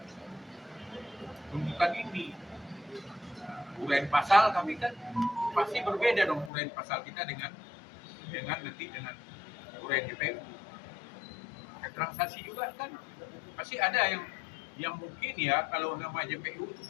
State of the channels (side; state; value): right; drops out; at 6.5 s